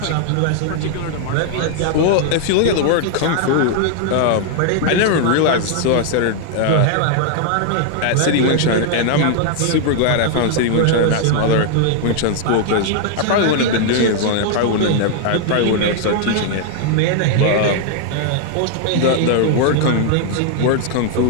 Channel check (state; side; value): different; both; correlation 0.00